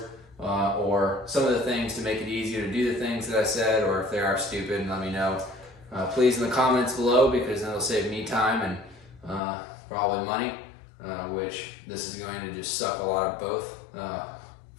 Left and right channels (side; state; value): right; drops out; at 9.4 s